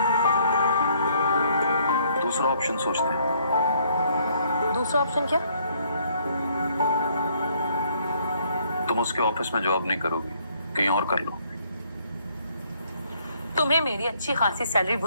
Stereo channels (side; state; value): both; inverted; correlation -0.66